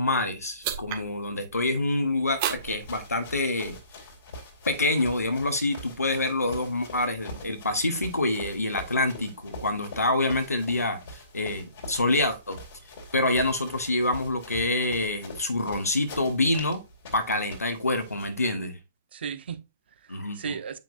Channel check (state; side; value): inverted; both; correlation -0.56